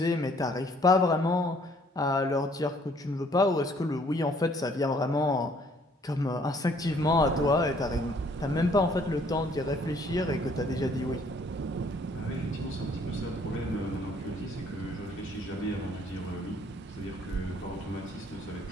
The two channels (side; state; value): both; normal; correlation 0.62